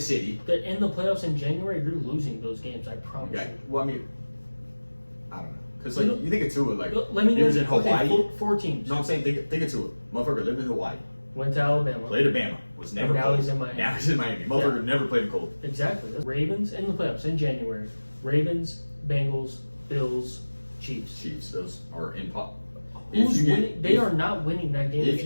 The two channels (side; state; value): both; inverted; correlation -1.00